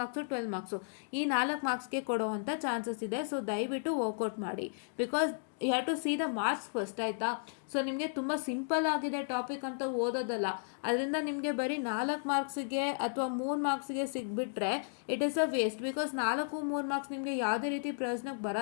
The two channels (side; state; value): right; silent; digital silence